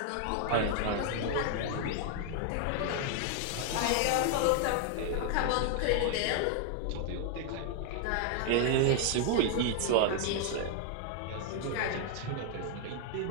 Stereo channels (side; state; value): both; different; correlation 0.00